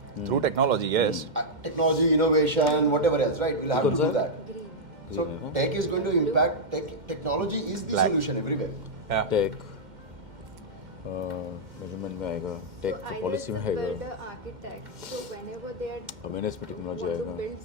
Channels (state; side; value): late; left; 2.1 ms